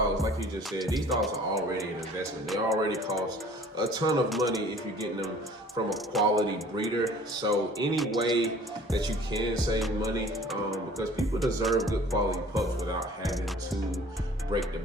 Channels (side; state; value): both; normal; correlation 0.50